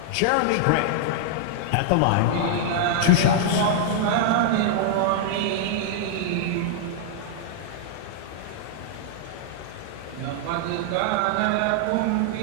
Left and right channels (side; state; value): both; different; correlation -0.01